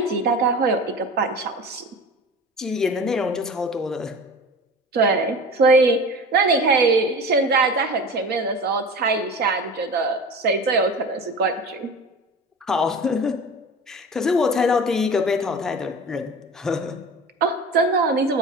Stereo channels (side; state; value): both; normal; correlation 0.35